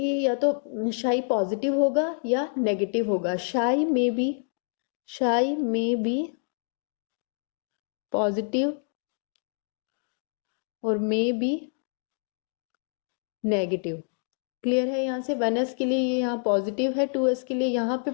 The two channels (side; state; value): right; silent; 60 dB below the other